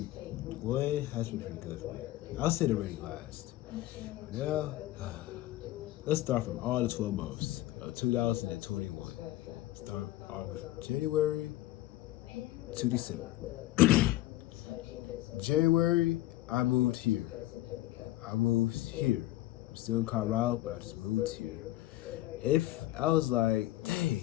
has been pretty good for me. I'll say the rating last. Now, let's start from all the 12 months of 2021. Start off with January to December. January, I moved here. I'm still in Colorado, but I just moved here. If I was like,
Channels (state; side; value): quieter; right; 15.9 dB